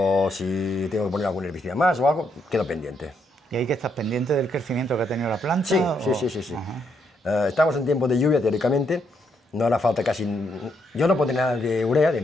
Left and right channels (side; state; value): both; normal; correlation 0.76